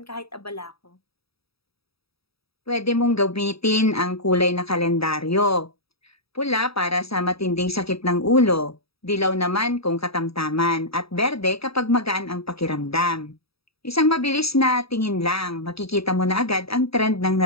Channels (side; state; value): right; late; 0.77 ms